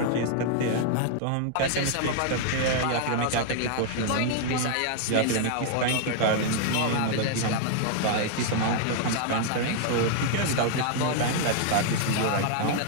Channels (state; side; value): different; both; correlation -0.01